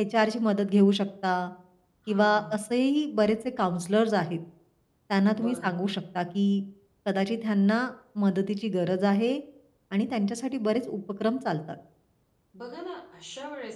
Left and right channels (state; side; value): identical; both; correlation 1.00